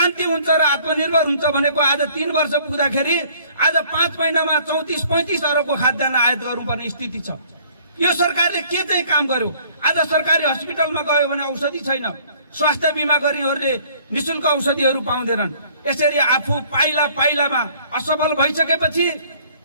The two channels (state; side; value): inverted; both; correlation -0.57